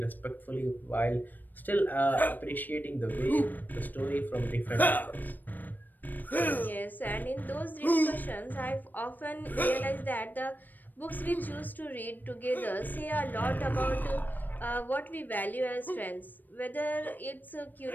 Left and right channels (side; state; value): right; late; 0.089 ms